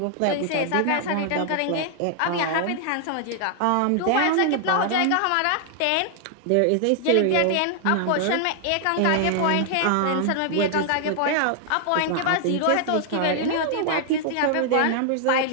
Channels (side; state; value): both; different; correlation 0.00